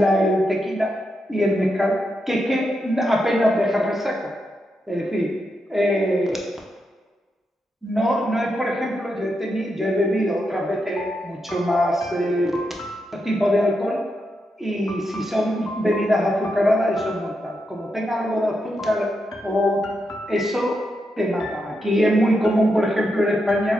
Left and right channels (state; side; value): normal; both; correlation 0.84